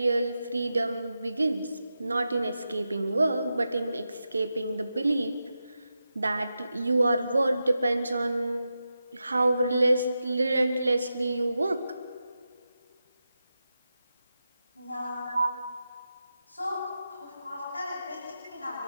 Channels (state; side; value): inverted; both; correlation -0.90